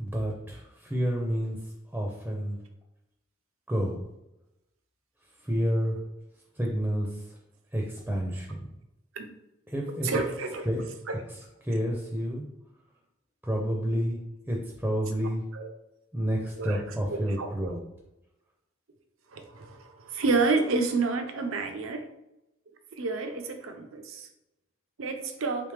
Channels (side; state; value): both; normal; correlation 0.64